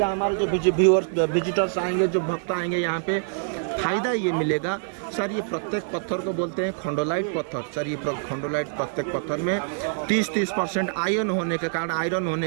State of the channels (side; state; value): left; silent; digital silence